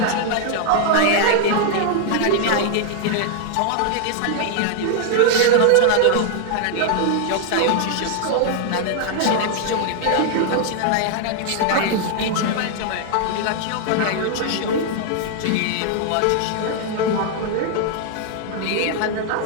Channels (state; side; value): different; both; correlation 0.00